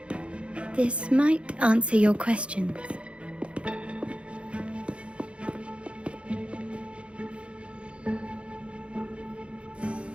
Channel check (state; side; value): late; left; 0.059 ms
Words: This might answer your questions.